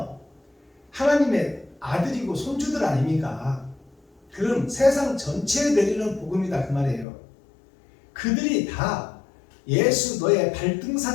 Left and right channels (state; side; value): drops out; right; at 7.1 s